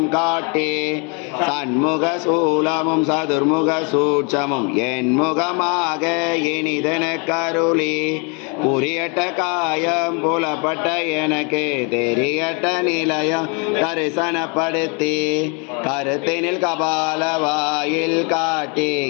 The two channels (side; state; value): right; quieter; 34.2 dB